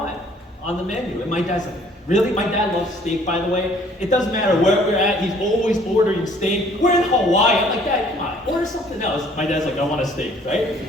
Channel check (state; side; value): normal; both; correlation 0.58